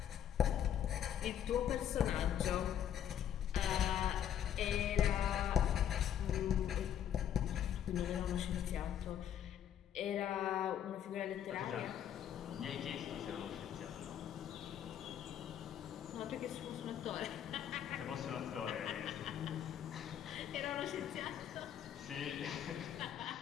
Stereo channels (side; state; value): right; quieter; 9.8 dB